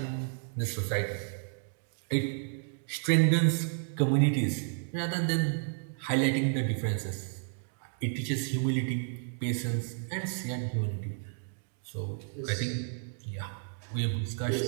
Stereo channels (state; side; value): silent; left; digital silence